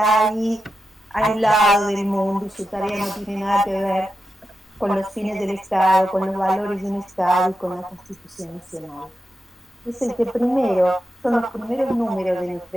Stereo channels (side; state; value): both; normal; correlation 0.89